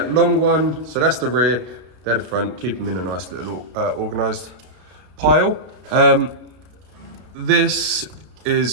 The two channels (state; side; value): late; left; 32 ms